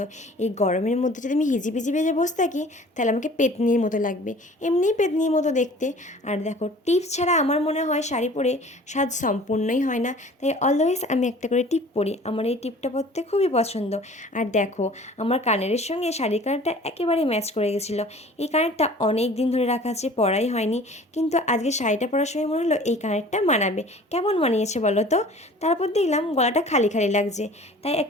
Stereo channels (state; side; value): normal; both; correlation 0.47